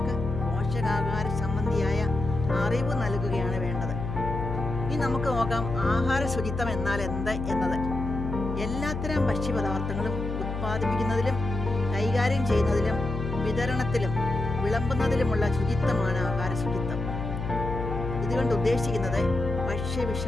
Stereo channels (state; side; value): noise; left; hum, 5 dB below the sound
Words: പോഷകാഹാര സംബന്ധിയായ അറിവ് നൽകുകയാണ് വേണ്ടത്. ഇനി നമുക്ക് നോക്കാം ആഹാര ശുചിത്വം എന്നാൽ എന്ത് എന്നത്. എല്ലാത്തരം ഭക്ഷ്യപദാർത്ഥങ്ങളും ഉത്പാദിപ്പിക്കുന്നതിലും കൈകാര്യം ചെയ്യുന്നതിലും വിതരണത്തിലും വിളമ്പുന്നതിലുമുള്ള ശുചിത്വമാണ് ആഹാര ശുചിത്വം. ഇതുകൊണ്ട് ഉദ്ദേശിക്കുന്നത്